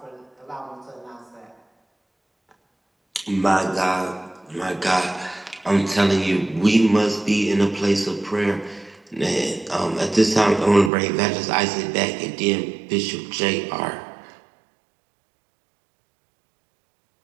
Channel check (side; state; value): left; drops out; at 10.9 s